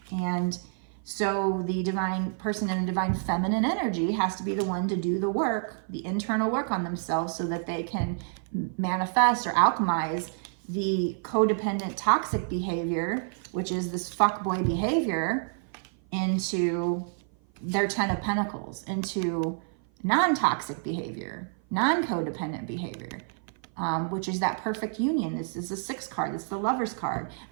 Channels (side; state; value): left; silent; 55 dB below the other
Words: And so the divine person in the divine feminine energy has to be the one to do the work, the internal work on themselves, so that they can manifest or alchemize the codependent toxic behavior, which is this fuckboy behavior, into their 10 of Pentacles, into non-toxic behavior, non-codependent behavior. Which is that perfect union. This is the 6th card. It's the Lover's card.